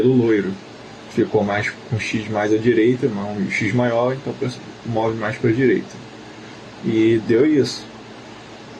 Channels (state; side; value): identical; both; correlation 1.00